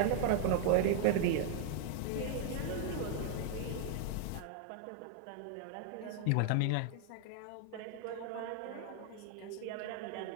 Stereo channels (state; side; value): different; both; correlation 0.00